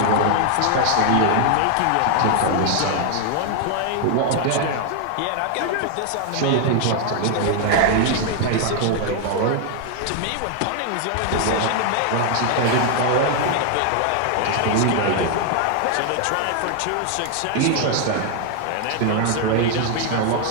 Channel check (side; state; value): both; different; correlation 0.00